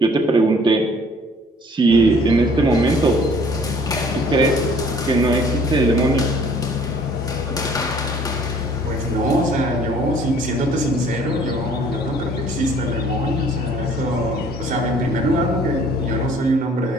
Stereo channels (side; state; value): both; normal; correlation 0.56